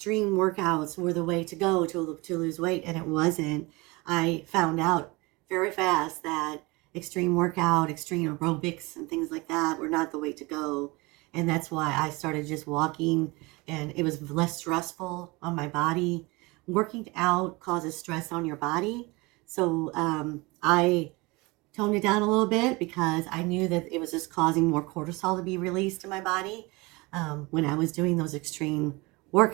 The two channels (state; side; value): quieter; left; 24.5 dB